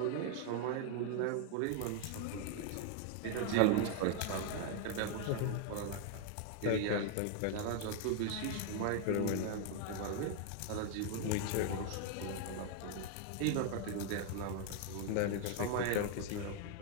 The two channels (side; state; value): both; different; correlation 0.00